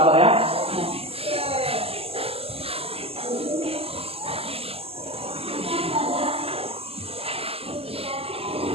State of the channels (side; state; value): left; late; 0.28 ms